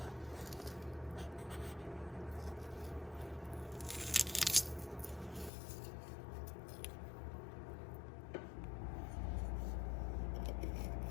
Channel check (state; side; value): drops out; right; at 5.5 s